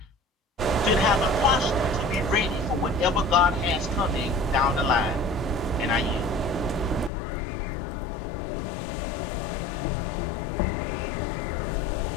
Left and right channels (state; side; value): drops out; right; at 7.1 s